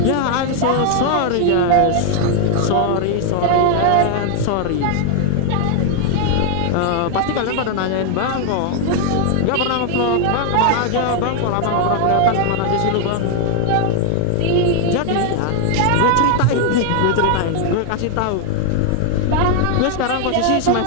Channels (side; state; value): both; different; correlation 0.00